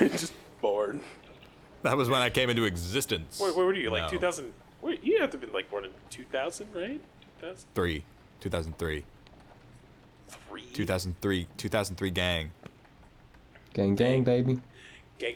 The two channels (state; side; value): identical; both; correlation 1.00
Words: born. That was when I came into existence. Where were you? Like No. 2000? Wait, you have to have been like born in 2000, right? 3. 2003. 2003 gang. Gang, gang, baby.